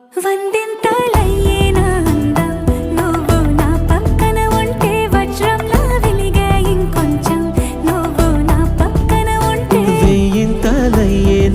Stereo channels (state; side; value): identical; both; correlation 1.00